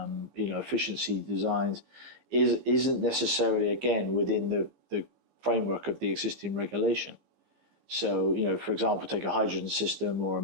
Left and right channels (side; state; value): left; late; 15 ms